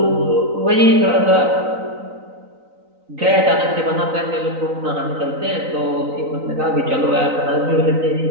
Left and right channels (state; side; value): late; left; 3.9 ms